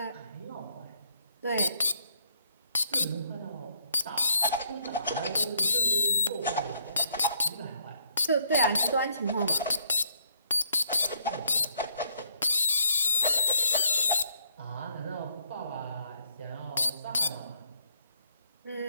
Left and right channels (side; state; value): both; inverted; correlation -0.71